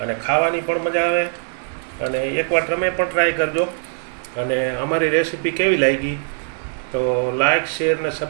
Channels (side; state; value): left; silent; 65 dB below the other